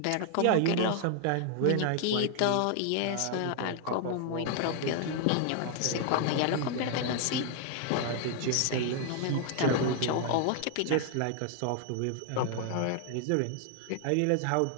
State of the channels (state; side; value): different; both; correlation 0.00